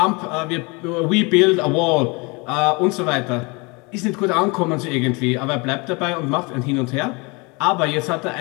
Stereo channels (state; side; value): quieter; right; 28.2 dB